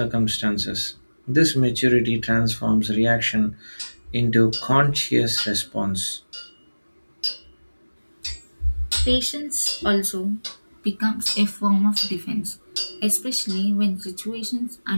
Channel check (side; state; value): both; inverted; correlation -1.00